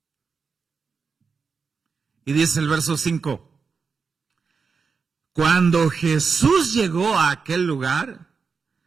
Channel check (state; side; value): quieter; left; 5.3 dB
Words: Y dice el verso 5, cuando Jesús llegó a aquel lugar,